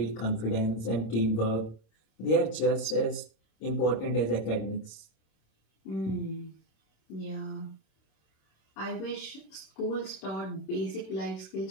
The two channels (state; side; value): late; right; 26 ms